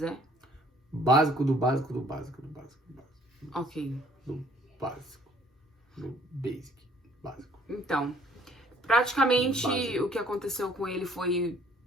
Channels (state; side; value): normal; both; correlation 0.59